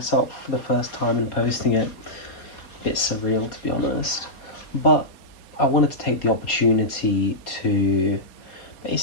for the first time and posting it. A bit surreal, to be honest. But I wanted to take the opportunity to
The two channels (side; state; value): right; late; 4.4 ms